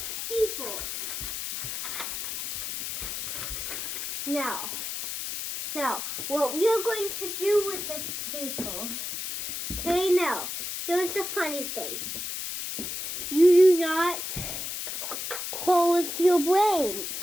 people. Now, what we are going to do with this paper. Okay, now, here's the funny thing. You do not close your brain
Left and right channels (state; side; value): noise; left; hiss, 5 dB below the sound